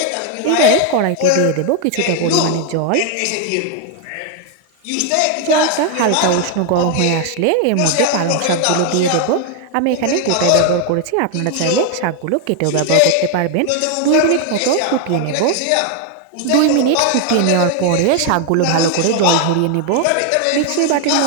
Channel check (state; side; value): different; both; correlation 0.01